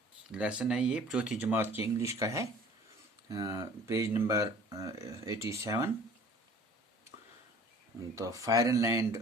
लेसन है ये चौथी जमात की इंग्लिश का है पेज नंबर 87। तो फायरलैंड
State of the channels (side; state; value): both; normal; correlation 0.49